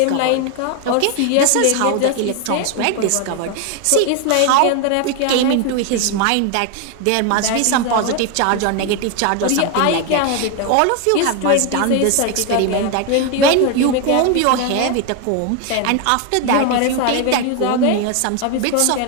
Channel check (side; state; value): both; different; correlation 0.01